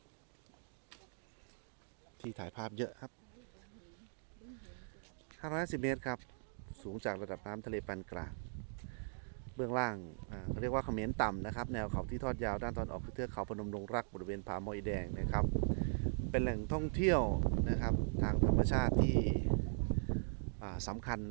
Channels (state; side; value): silent; left; digital silence